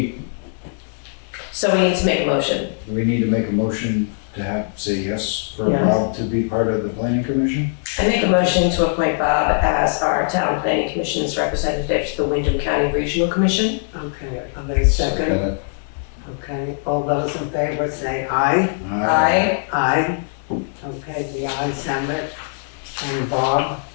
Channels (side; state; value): right; silent; digital silence